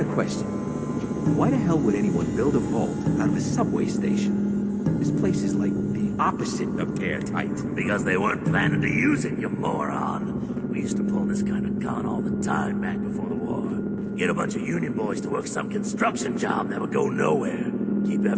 question. Why the hell would anyone build a vault out of a subway station? This place is like the opposite of airtight. Because they weren't planning to use it, you moron. We used to pull this kind of gun all the time back before the war. Get a bunch of union boys to work some construction job that would go nowhere. Keep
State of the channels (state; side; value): identical; both; correlation 1.00